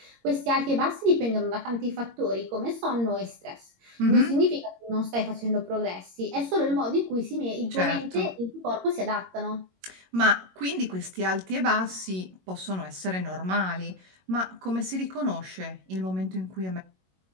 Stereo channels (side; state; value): left; late; 22 ms